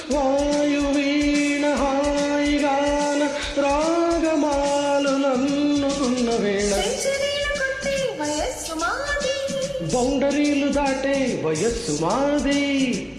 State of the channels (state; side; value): identical; both; correlation 1.00